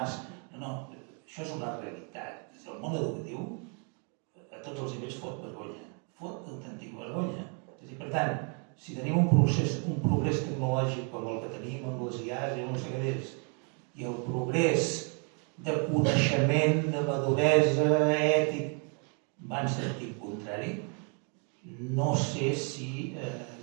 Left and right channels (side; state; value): left; quieter; 38.4 dB